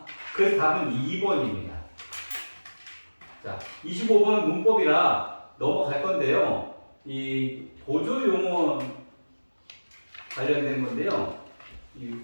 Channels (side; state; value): both; inverted; correlation -1.00